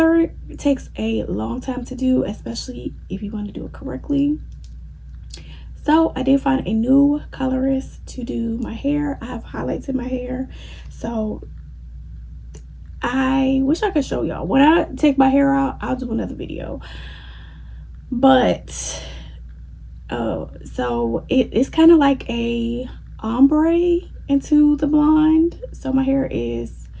takes a long time to do, especially if you want to do it correctly. So I did find a new colorist to do my hair. I have highlights in my hair, so I wish I could show y'all. When I take my hair out, I'll do another video. But so it's kind of like a ombre into the blonde. So my hair is,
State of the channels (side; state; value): both; identical; correlation 1.00